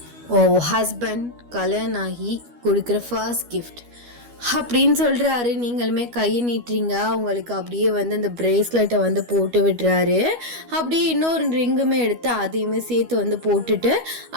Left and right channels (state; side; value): late; left; 12 ms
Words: ஓ ஹஸ்பண்ட் கல்யாணம் ஆகி கொடுக்குற ஃபர்ஸ்ட் கிஃப்ட் அப்படின்னு சொல்கிறாரு. நீங்களுமே கையை நீட்டுறீங்க. அவங்களுக்கு அப்படியே வந்து அந்த ப்ரேஸ்லெட்டை வந்து போட்டு விடுறாரு. அப்படியே இன்னொரு ரிங்குமே எடுத்து அதையுமே சேர்த்து வந்து போட்டுட்டு